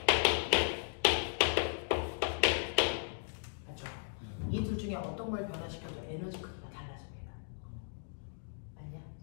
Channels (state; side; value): silent; right; digital silence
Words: 맞죠? 이 둘 중에 어떤 걸 변화시켜도 에너지 크기가 달라집니다. 맞냐?